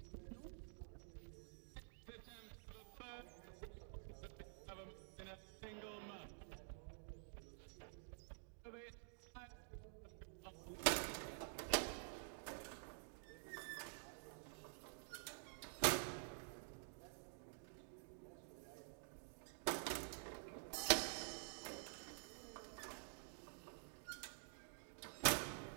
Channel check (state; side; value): silent; left; digital silence